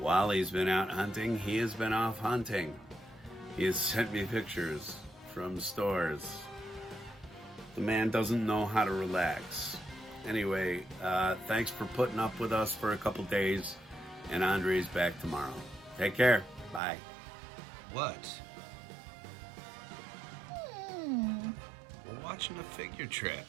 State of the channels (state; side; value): drops out; left; at 16.8 s